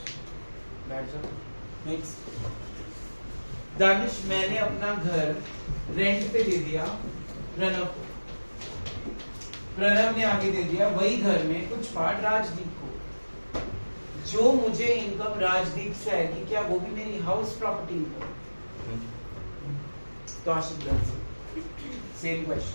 बैठ जाओ। नेक्स्ट। दानिश, मैंने अपना घर रेंट पे दे दिया प्रणव को। प्रणव ने आगे दे दिया वही घर में कुछ पार्ट राजदीप को। जो मुझे इनकम राजदीप से आएगी, क्या वो भी मेरी हाउस प्रॉपर्टी इनकम? तो आशीष, सेम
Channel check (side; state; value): both; inverted; correlation -1.00